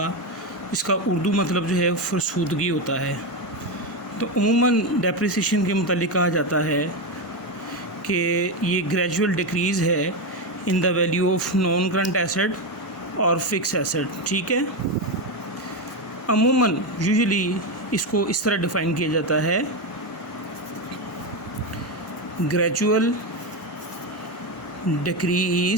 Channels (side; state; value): both; normal; correlation 0.11